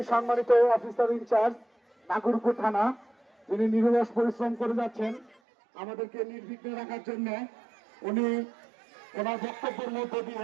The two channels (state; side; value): drops out; left; at 5.4 s